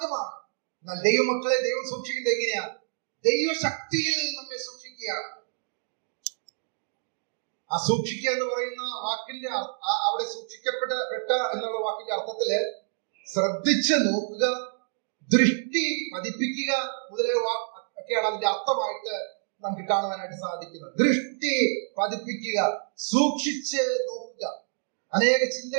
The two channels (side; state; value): left; silent; digital silence